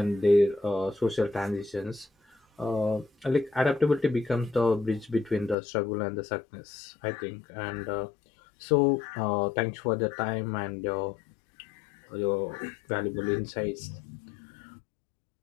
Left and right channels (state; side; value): drops out; right; at 5.6 s